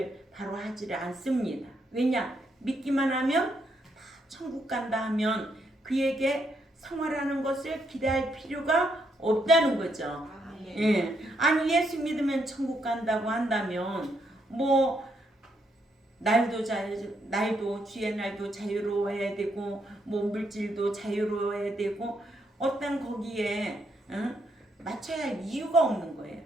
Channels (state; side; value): normal; both; correlation 0.77